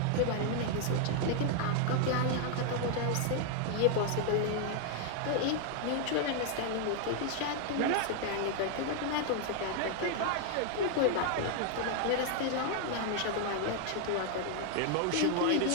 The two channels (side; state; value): both; different; correlation 0.00